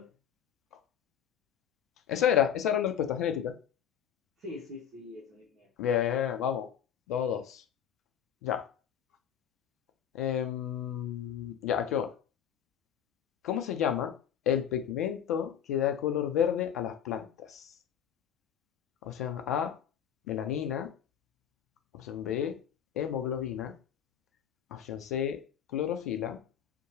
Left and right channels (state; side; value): quieter; right; 9.1 dB